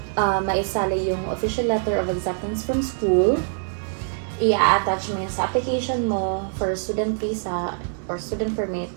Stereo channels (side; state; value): left; silent; digital silence